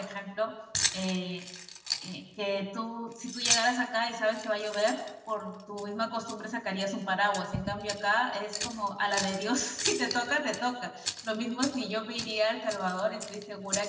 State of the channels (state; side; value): identical; both; correlation 1.00